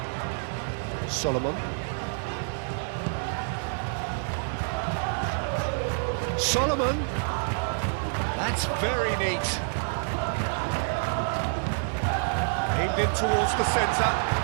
Solomon. Solomon. That's very neat. Aimed in towards the centre.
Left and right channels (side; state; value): left; silent; digital silence